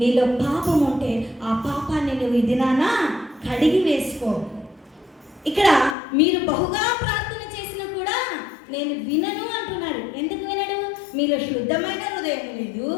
నీలో పాపం ఉంటే ఆ పాపాన్ని నువ్వు ఈ దినాన కడిగి వేసుకో. ఇక్కడ మీరు బహుగా ప్రార్థన చేసినా కూడా నేను వినను అంటున్నాడు. ఎందుకు వినడు? మీలో శుద్ధమైన హృదయం లేదు,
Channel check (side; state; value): right; drops out; at 6.0 s